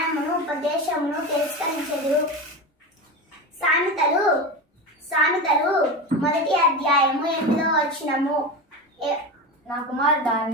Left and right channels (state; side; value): normal; both; correlation 0.23